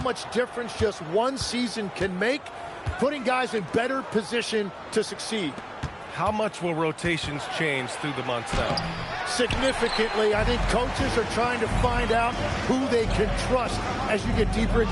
difference just one season can make, putting guys in better position to succeed. How much will rotations change through the months now? Significantly. I think coaches are trying to find out who they can trust as you get deeper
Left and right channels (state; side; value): identical; both; correlation 1.00